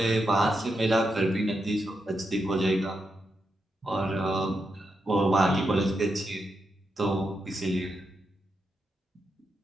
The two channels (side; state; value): both; normal; correlation 0.85